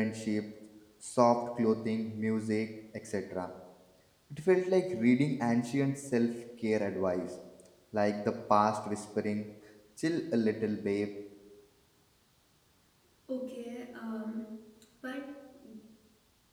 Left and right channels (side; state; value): both; identical; correlation 1.00